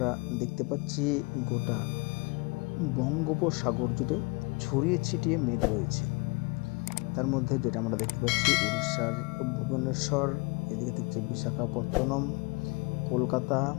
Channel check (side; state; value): right; quieter; 27.5 dB